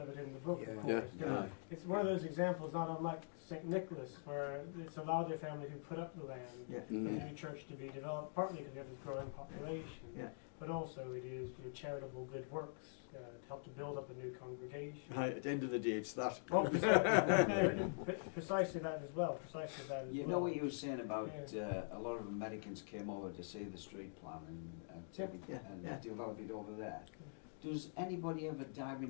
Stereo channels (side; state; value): right; silent; digital silence